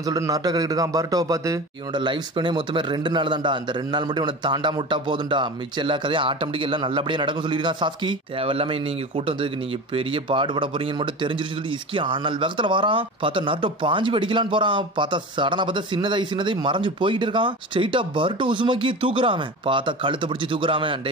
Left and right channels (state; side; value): normal; both; correlation 0.31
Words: சொல்லிட்டு நட்ட கேட்டுக்கிட்டு இருக்கான் பர்ட்டோவை பார்த்து. இவனோட லைஃப் ஸ்பேனே மொத்தமே 2 நாள் தான்டா, அந்த 2 நாள் மட்டும் இவனை தாண்டா முட்டா போதும்டா, மிச்சம் எல்லா கதையும் ஆட்டோமேட்டிக் எல்லாம் நல்லபடியா நடக்கும் சொல்லியிருக்கான் சாஸ்கி. தேவையில்லாம நீங்க கூட்டம் வந்ததுக்கு நீங்க பெரிய பாடுபட போறீங்கன்னு மட்டும் தெரிஞ்சிருச்சு சொல்லி இஸ்கி ஆனால் வேகத்துல வரான். பார்த்தா நட்டோ பாஞ்சு வெடிக்கலான்னு போறான். பார்த்தா சடனா பார்த்தா சின்னதாய் மறைஞ்சு போயிட்டு இருக்கான். ஸ்ட்ரெயிட்டா பர்ட்டோ உசுமாக்கி தூக்குறாம. பார்த்தா கழுத்தை பிடிச்சி தூக்குறாம. டே